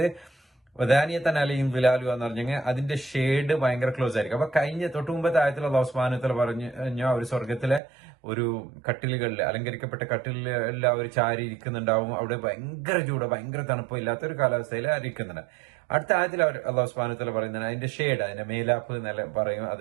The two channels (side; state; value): left; drops out; at 7.8 s